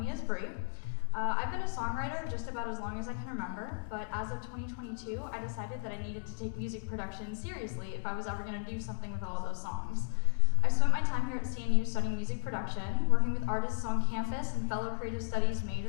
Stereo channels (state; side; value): silent; right; digital silence